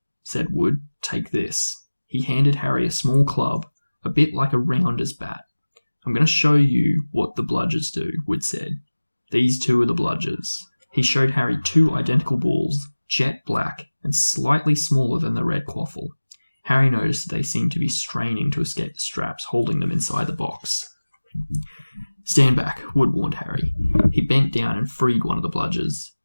said Wood. Take this. He handed Harry a small club, a bit like a rounder's bat. I'm going to show you what the bludgers do, Wood said. These 2 are the bludgers. He showed Harry 2 identical balls, jet black and slightly smaller than the red quaffle. Harry noticed that they seemed to be straining to escape the straps holding them inside the box. Stand back, Wood warned Harry. He bent down and freed one of the bludgers.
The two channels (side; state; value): both; inverted; correlation -1.00